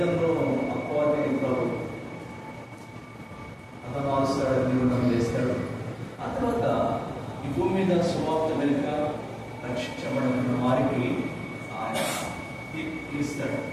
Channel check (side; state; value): both; identical; correlation 1.00